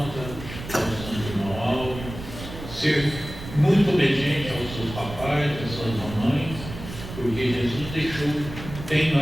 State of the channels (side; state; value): right; noise; rumble, 11 dB below the sound